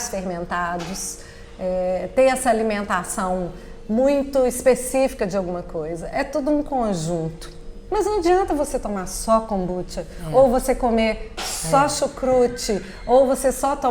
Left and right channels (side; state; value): both; identical; correlation 1.00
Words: fermentados, ter essa alimentação muito específica de alguma coisa. É tudo um conjunto. Mas não adianta você tomar só kombucha, ou você comer só chucrute, ou você só